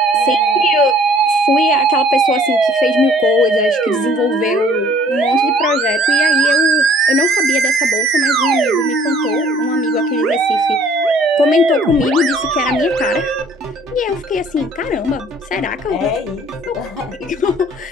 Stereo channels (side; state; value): both; normal; correlation 0.56